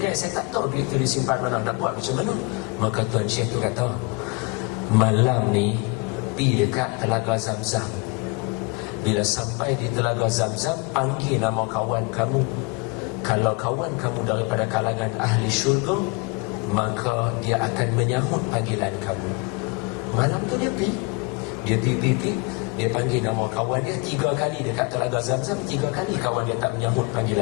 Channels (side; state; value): right; quieter; 28.8 dB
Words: saya tak tahu duit tu disimpan mana, nak buat macam mana. Maka tuan syekh tu kata, malam ni pergi dekat Telaga Zamzam. Bila sampai di Telaga Zamzam, panggil nama kawan kamu. Kalau kawan kamu daripada kalangan ahli syurga, maka dia akan menyahut panggilan kamu. Malam tu dia pergi. Dia panggil nama kawan dia 3 kali dekat Telaga Zamzam. 3 kali kawan dia tak menyahut